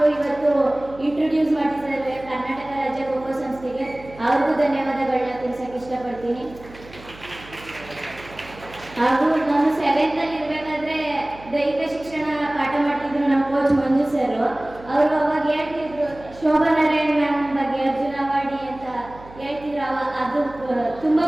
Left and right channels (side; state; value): right; noise; hum, 19 dB below the sound